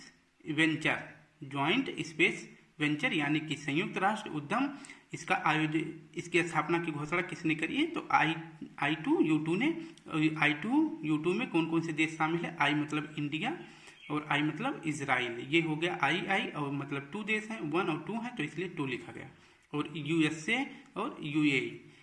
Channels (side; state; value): both; identical; correlation 1.00